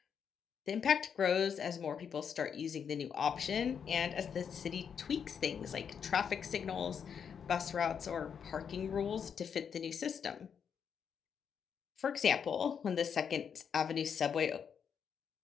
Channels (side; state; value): right; quieter; 7.3 dB